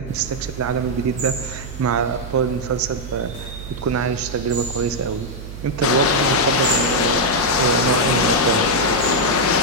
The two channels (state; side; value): noise; right; hum, 11 dB below the sound